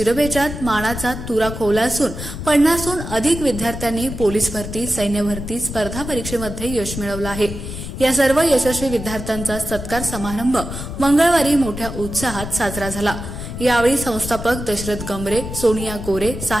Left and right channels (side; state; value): left; noise; rumble, 8 dB below the sound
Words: मानाचा तुरा खोवला असून 50हून अधिक विद्यार्थ्यांनी पोलीस भरती, सैन्य भरती स्पर्धा परीक्षेमध्ये यश मिळवलं आहे। या सर्व यशस्वी विद्यार्थ्यांचा सत्कार समारंभ मंगळवारी मोठ्या उत्साहात साजरा झाला। यावेळी संस्थापक दशरथ गंभरे, सोनिया गोरे,